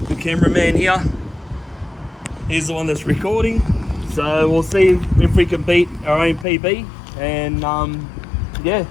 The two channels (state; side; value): drops out; right; at 6.5 s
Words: the cameraman here. He's the one that's recording. So we'll see if we can beat our own PB, and yeah,